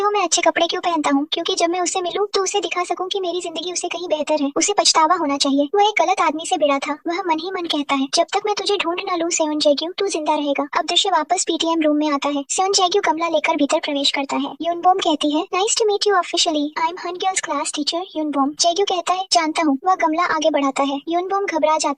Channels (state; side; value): identical; both; correlation 1.00